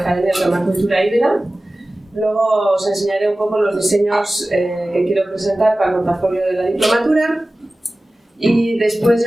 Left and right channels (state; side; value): normal; both; correlation 0.97